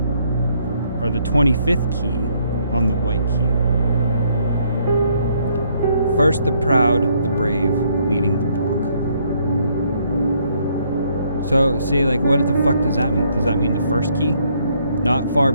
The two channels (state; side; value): inverted; both; correlation -0.69